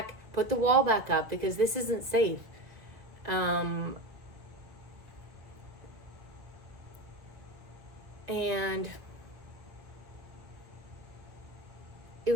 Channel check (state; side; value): late; left; 1.5 ms